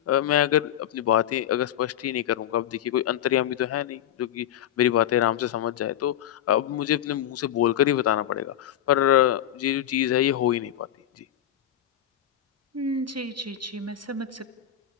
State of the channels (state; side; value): quieter; right; 11.0 dB